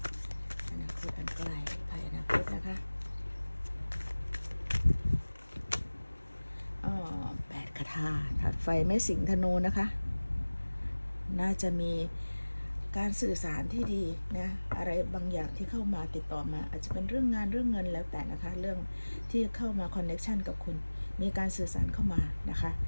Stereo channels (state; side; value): inverted; both; correlation -1.00